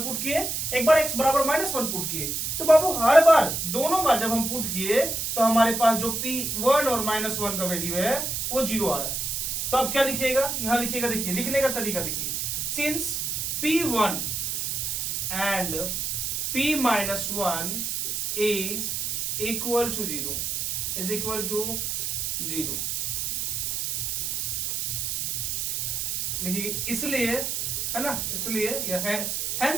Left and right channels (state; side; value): noise; right; hiss, 1 dB below the sound